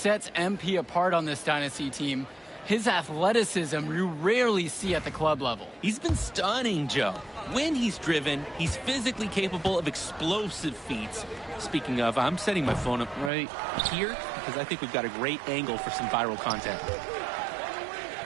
MP apart on this Dynasty team. His athleticism you rarely see at the club level. He's been stunning, Joe. When he's driven, he's physically capable of explosive feats. Speaking of, I'm setting my phone up right here because I think we've got a great angle for some viral content.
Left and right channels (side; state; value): left; drops out; at 13.3 s